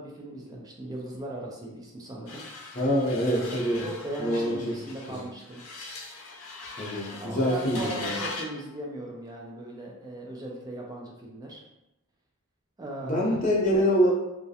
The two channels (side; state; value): both; normal; correlation 0.46